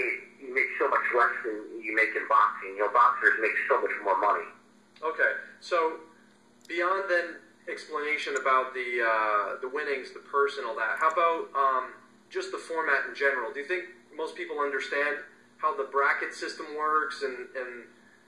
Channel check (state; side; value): identical; both; correlation 1.00